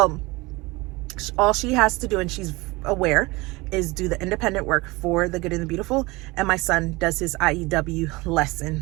all she has to do, and she's aware, is do the independent work for the good and the beautiful, and my son does his IEW lesson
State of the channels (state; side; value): quieter; left; 23.1 dB